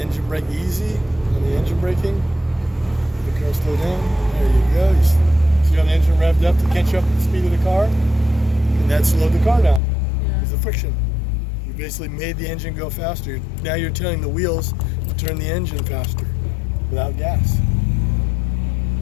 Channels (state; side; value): drops out; right; at 9.8 s